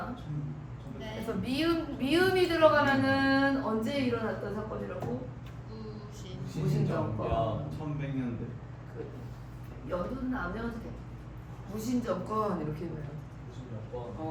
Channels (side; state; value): both; identical; correlation 1.00